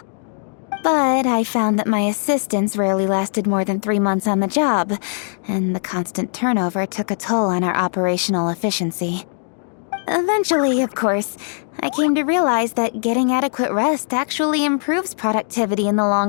But I found that my assistants rarely lasted more than 3 months on the job, and the constant turnover took a toll on our operational efficiency. Eventually, of course, I came to realize that getting adequate rest actually improves productivity in the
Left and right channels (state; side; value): silent; right; digital silence